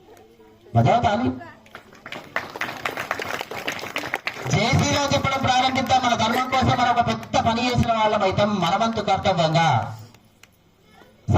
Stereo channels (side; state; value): both; identical; correlation 1.00